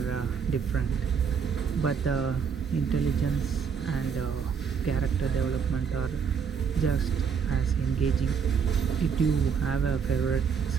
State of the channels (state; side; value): quieter; left; 6.5 dB